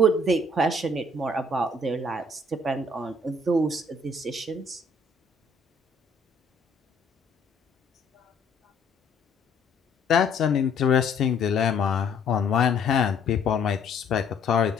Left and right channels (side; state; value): right; quieter; 3.1 dB